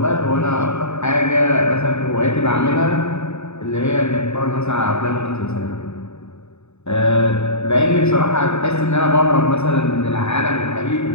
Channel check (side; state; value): right; late; 0.81 ms